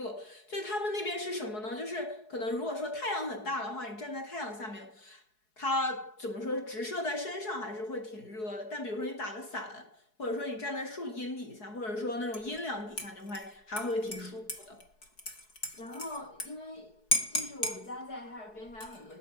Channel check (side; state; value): right; late; 4.7 ms